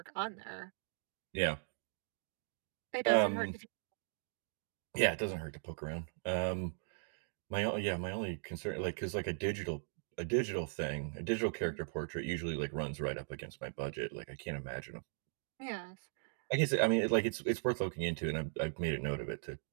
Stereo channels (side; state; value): left; silent; digital silence